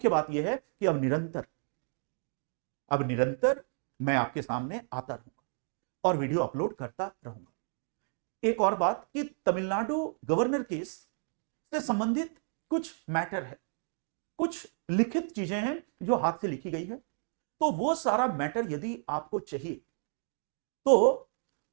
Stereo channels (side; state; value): left; silent; 57 dB below the other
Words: बात यह है कि अब निरंतर मैं आपके सामने आता रहूंगा और वीडियो अपलोड करता रहूंगा। एक और बात कि तमिलनाडु गवर्नर केस से संबंधित कुछ मैटर है, कुछ लिखित चीजें हैं जो हाथ से लिखी गई है। तो वो सारा मैटर यदि आपको चाहिए तो